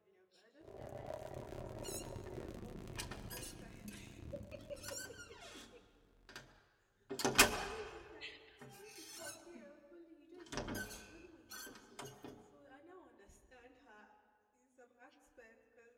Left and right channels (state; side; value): identical; both; correlation 1.00